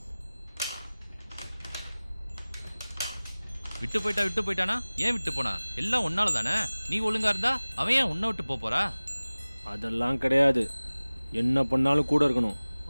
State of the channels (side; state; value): both; inverted; correlation -0.99